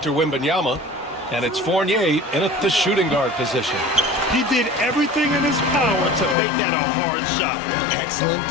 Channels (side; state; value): right; drops out; at 6.4 s